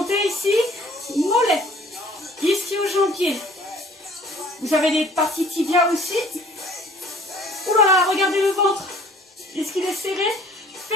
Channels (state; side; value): normal; both; correlation 0.54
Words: ici. Mollet. Ischio-jambier. Vous avez des parties tibia aussi. Ouh là là, regardez le ventre. Est-ce qu'il est serré?